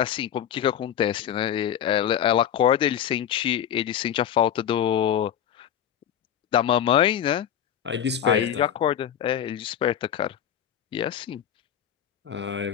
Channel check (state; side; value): quieter; right; 9.8 dB